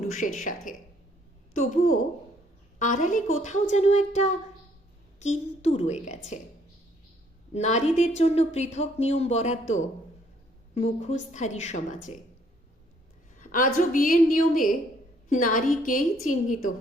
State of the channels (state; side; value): normal; both; correlation 0.65